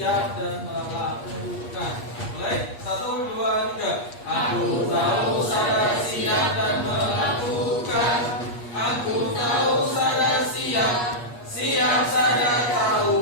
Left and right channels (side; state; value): right; late; 8.4 ms